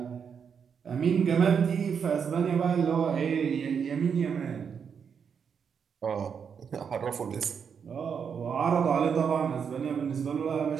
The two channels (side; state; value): left; quieter; 6.8 dB